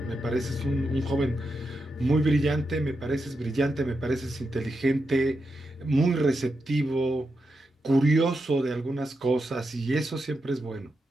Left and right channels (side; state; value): both; normal; correlation 0.86